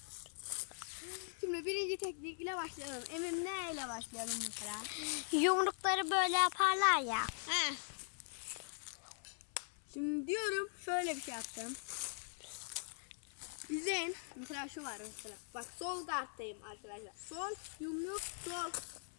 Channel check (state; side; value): silent; right; 50 dB below the other